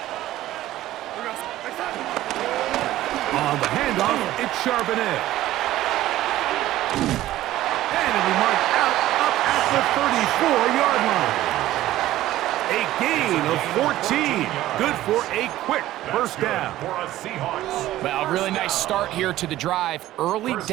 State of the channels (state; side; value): quieter; left; 14.8 dB